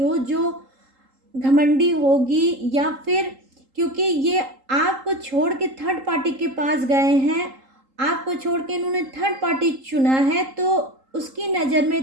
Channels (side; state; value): left; late; 3.8 ms